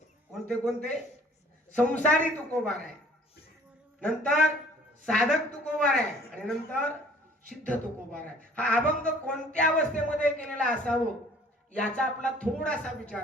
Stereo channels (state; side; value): normal; both; correlation 0.54